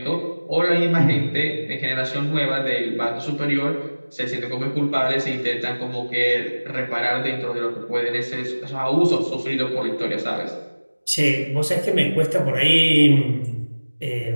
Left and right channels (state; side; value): inverted; both; correlation -1.00